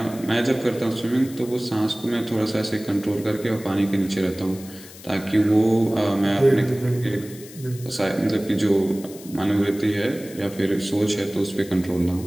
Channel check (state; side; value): noise; left; hiss, 18 dB below the sound